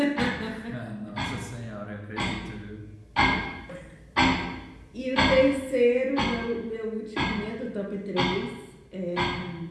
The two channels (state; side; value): identical; both; correlation 1.00